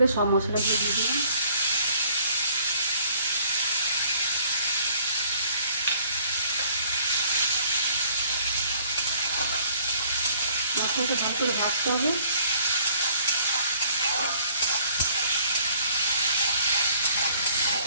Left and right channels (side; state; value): both; inverted; correlation -0.57